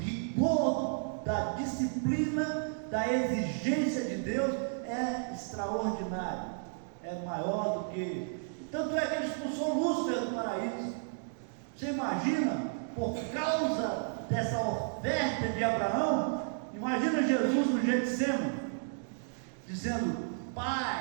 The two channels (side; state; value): left; silent; digital silence